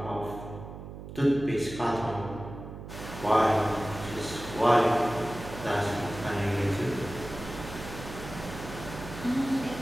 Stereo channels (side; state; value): right; noise; hum, 11 dB below the sound